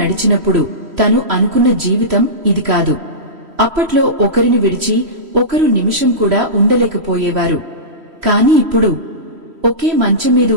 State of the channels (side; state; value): left; late; 3.1 ms